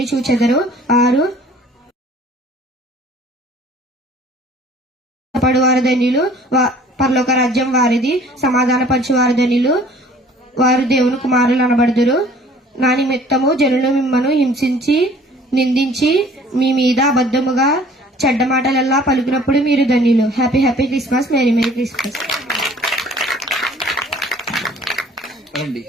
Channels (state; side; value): normal; both; correlation 0.53